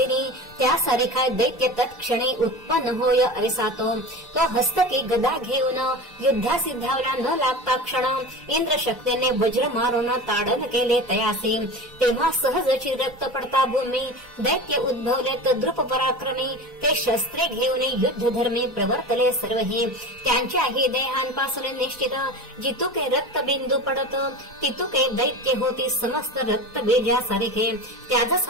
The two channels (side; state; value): both; normal; correlation 0.31